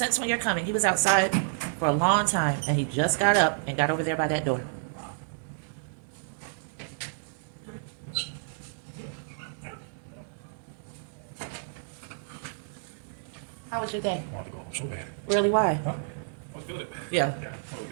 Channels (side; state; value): left; silent; digital silence